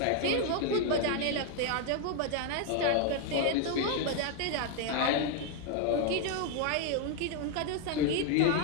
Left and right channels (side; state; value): both; different; correlation 0.01